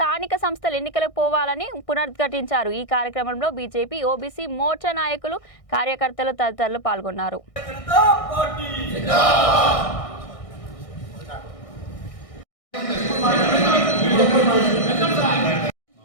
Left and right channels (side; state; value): right; late; 1.6 ms